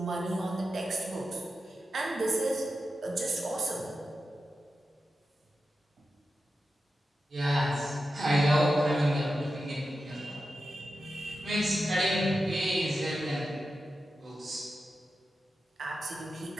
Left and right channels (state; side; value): normal; both; correlation 0.91